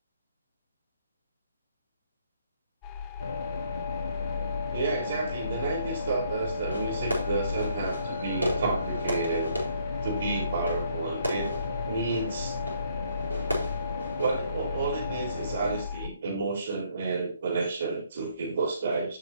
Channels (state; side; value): inverted; both; correlation -0.67